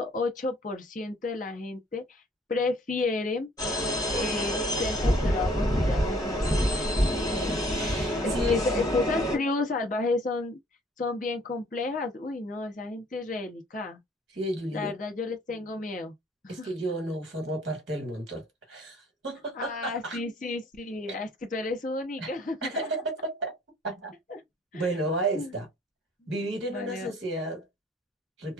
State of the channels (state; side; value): normal; both; correlation 0.58